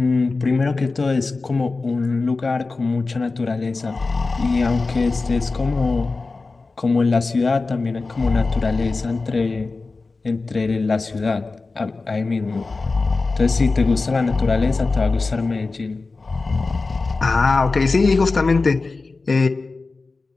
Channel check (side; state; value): right; quieter; 3.8 dB